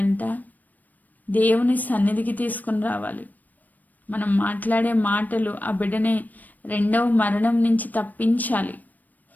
దేవుని సన్నిధికి తీసుకుని రావాలి. మనం మాట్లాడే మాటలు ఆ బిడ్డని రెండవ మరణం నుంచి తప్పించాలి.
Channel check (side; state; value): right; late; 0.083 ms